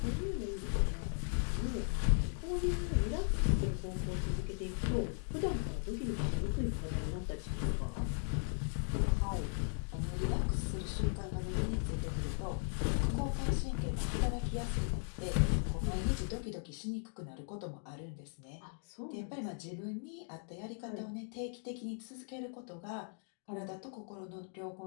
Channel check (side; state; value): right; silent; 53 dB below the other